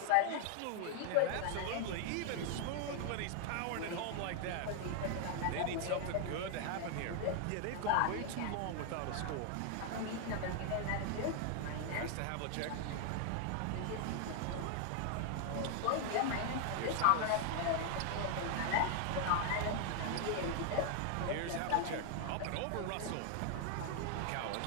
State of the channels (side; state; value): both; different; correlation 0.00